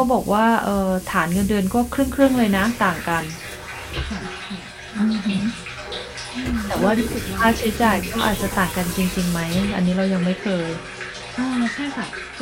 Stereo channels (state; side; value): identical; both; correlation 1.00